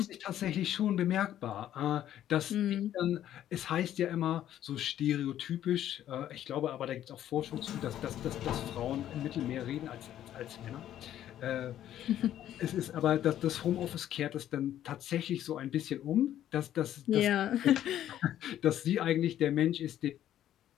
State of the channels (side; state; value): right; quieter; 11.6 dB